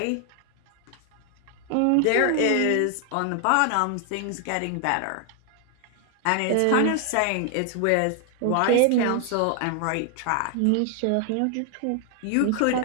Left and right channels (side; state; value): both; different; correlation 0.00